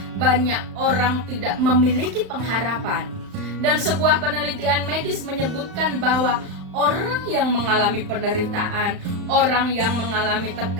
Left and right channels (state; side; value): late; left; 35 ms